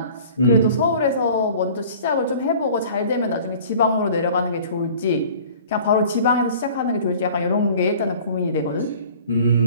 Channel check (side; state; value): both; inverted; correlation -0.47